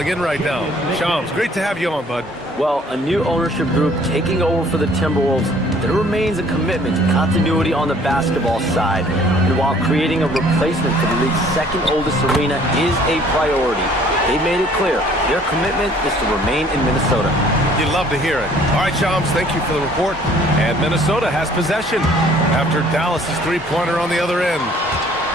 in right now. Shams, great to have you on, bud. Well, a new ownership group taking over for the Timberwolves, there remains a commitment to continuity on the basketball side. And while creating a replacement for the league's second oldest arena is a priority, they made it clear their commitment is to remain in Minnesota. You'd love to hear it. All right, Shams, thank you for the report. And Minnesota has possession after Dallas' three-pointer on the other end.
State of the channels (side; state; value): both; normal; correlation 0.57